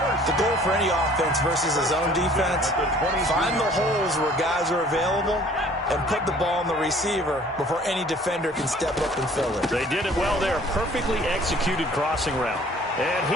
goal for any offense versus his own defense, find the holes where guys are available and put the ball on the receiver before any defender can step up and fill it. They did it well there. Perfectly executed crossing route. And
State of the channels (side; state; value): both; normal; correlation 0.53